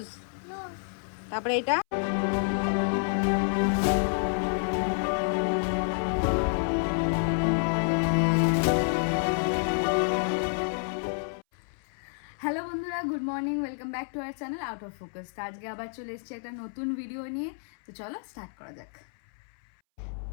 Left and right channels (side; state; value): right; silent; 58 dB below the other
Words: তারপরে এটা হ্যালো বন্ধুরা, good morning, welcome back to our channel out of focus. আজকে আবার চলে এসেছি একটা নতুন ভিডিও নিয়ে। তো চলো স্টার্ট করা যাক।